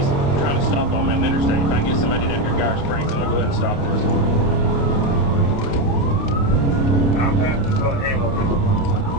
trying to stop on the interstate. If I can get somebody down here Garden Springs, then we'll go ahead and stop this.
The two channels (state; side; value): late; right; 29 ms